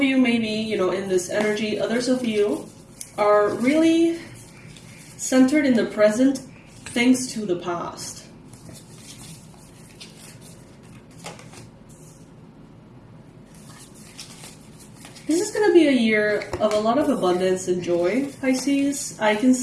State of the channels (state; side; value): identical; both; correlation 1.00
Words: may be, in this energy. Others of you are really centered in the present thanks to the past. This is going to be a year of a lot of abundance and joy, Pisces. I can